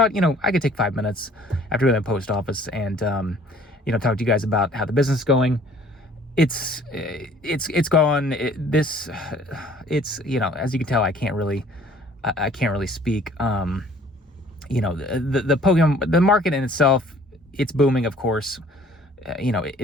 I could take 5 minutes after the post office and, talk to you guys about how the business is going. It's gone. As you can tell, I can't really speak. The Pokemon, the market in itself, it's booming, of course.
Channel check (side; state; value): both; normal; correlation 0.55